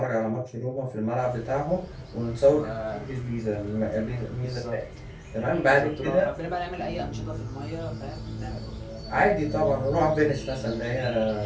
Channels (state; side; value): identical; both; correlation 1.00